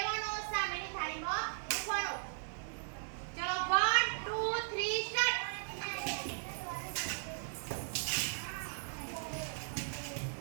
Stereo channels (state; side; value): silent; left; digital silence